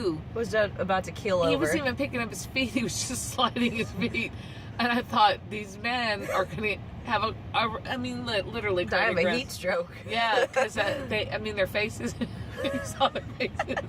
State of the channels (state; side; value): identical; both; correlation 1.00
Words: Was about to keel over. He wasn't even picking up his feet; he was just sliding his feet. And I thought, these men are going to have literally die of a cardiac heat stroke. Yeah, because their faces. You saw their faces.